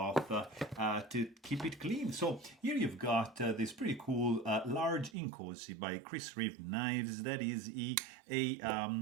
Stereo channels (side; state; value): left; drops out; at 5.2 s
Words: to keep it clean. So here you've got this pretty cool large Inkosi by Reeve knives. That is a